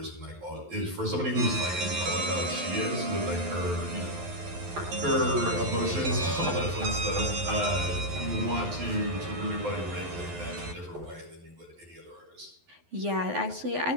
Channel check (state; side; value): late; left; 11 ms